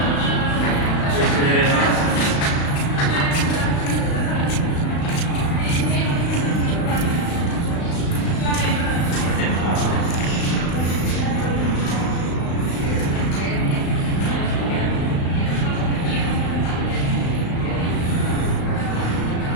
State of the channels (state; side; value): late; right; 35 ms